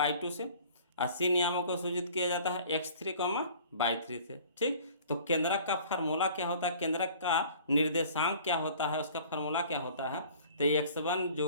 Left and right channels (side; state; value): both; inverted; correlation -0.49